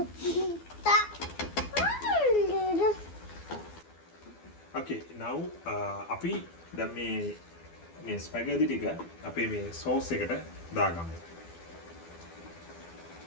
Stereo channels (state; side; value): late; right; 12 ms